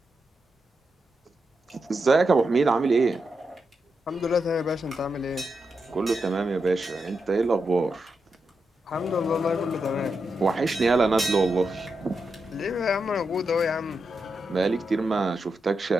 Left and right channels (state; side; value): normal; both; correlation 0.86